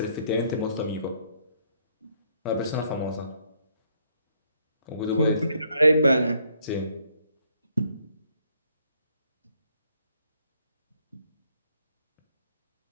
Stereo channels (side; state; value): both; inverted; correlation -0.69